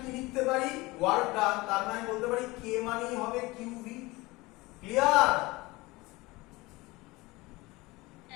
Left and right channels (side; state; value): right; quieter; 21.9 dB